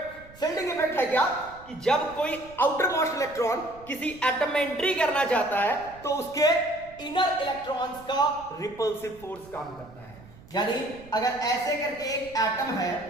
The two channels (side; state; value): right; noise; rumble, 21 dB below the sound